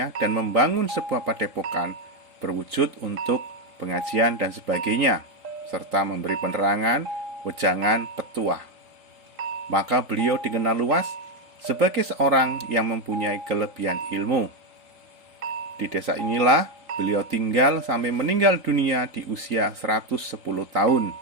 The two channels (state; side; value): late; left; 3.8 ms